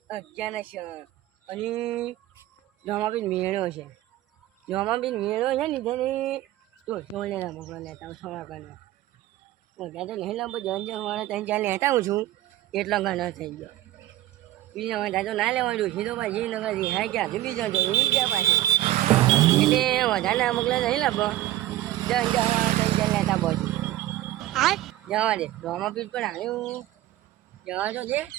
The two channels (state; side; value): quieter; left; 14.8 dB